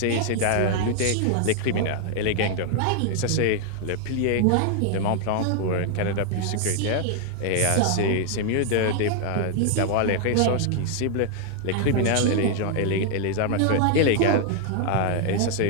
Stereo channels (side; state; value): both; different; correlation 0.00